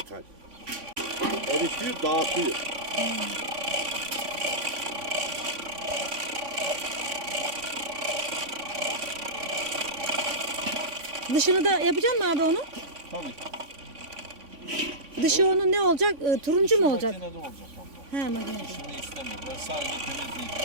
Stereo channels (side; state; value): left; late; 3.5 ms